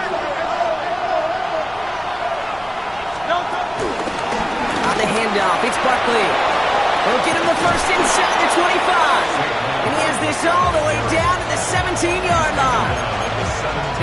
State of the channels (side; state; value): left; noise; rumble, 23 dB below the sound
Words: On the handoff, it's Barkley. They'll get him the first inside the 25. And he has this all the way down to the 17-yard line.